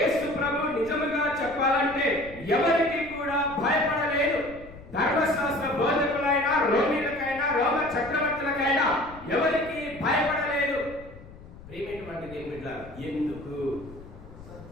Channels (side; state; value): left; noise; rumble, 18 dB below the sound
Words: ప్రభు నిజముగా చెప్పాలంటే ఎవరికి కూడా భయపడలేదు. ధర్మశాస్త్ర బోధకులైనా, రోమిలకైనా, రోమ చక్రవర్తులకైనా ఎవరికి భయపడలేదు. ప్రియమైనటువంటి దేవుని బిడ్డలారా, ఎందుకు?